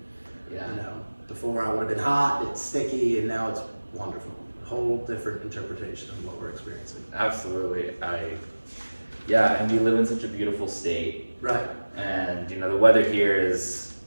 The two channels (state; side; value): inverted; both; correlation -1.00